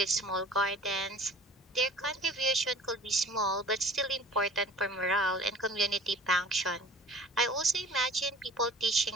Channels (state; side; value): normal; both; correlation 0.46